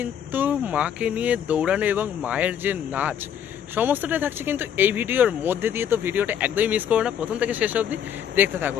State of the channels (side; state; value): right; quieter; 9.0 dB